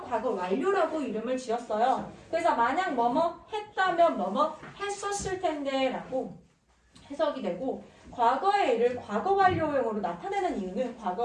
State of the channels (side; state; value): both; identical; correlation 1.00